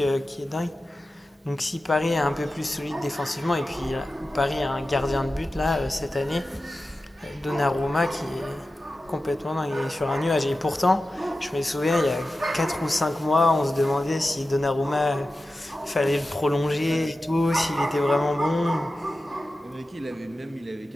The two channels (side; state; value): both; normal; correlation 0.94